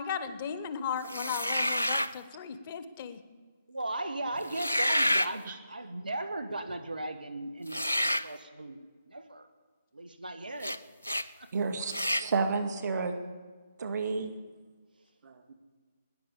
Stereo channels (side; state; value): both; inverted; correlation -0.82